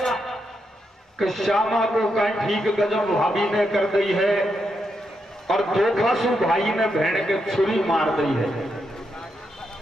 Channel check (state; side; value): normal; both; correlation 0.82